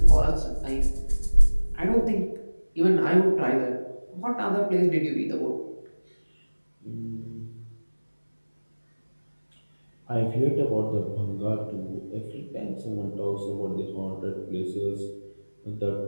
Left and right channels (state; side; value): inverted; both; correlation -1.00